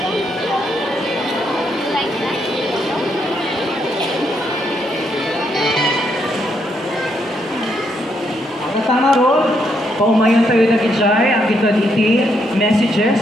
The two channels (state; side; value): normal; both; correlation 0.76